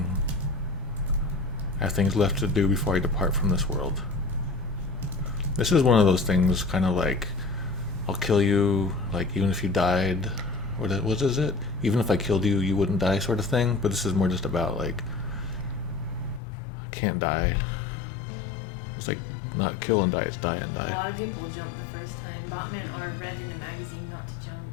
I have things left to do before I depart from this world. This is one of those things, kind of I'll kill you, even if you died. What is it? Even if I killed you, you wouldn't die, sort of thing. But this is more just about I can't die. It's not kill and die, it's die and die. A lot of people jumped the first time. Botman or read in a magazine not to jump.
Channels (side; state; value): right; drops out; at 16.4 s